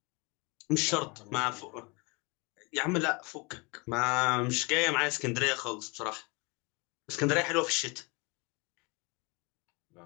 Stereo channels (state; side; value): quieter; right; 27.9 dB